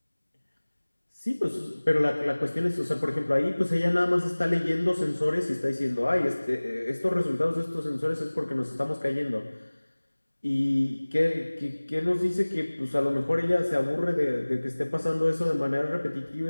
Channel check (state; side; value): inverted; both; correlation -1.00